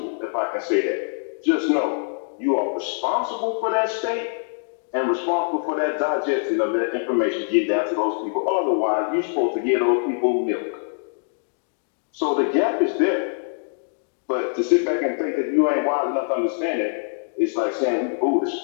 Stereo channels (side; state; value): right; silent; digital silence